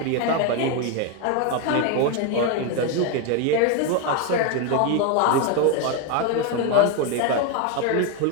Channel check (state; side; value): different; both; correlation 0.02